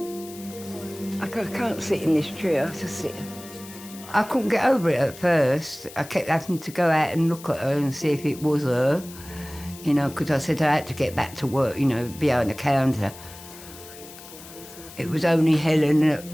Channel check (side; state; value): left; noise; hiss, 17 dB below the sound